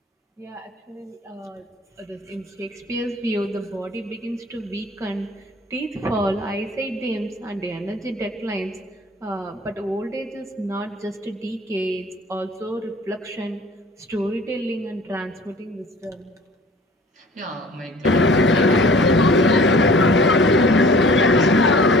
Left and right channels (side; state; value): both; normal; correlation 0.48